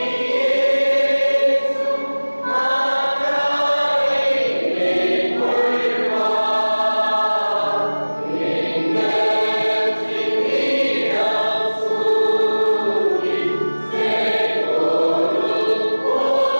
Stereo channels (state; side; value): inverted; both; correlation -1.00